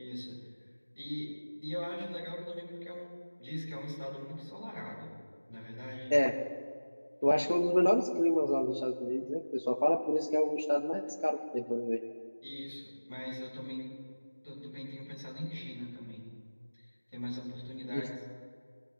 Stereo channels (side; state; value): both; inverted; correlation -1.00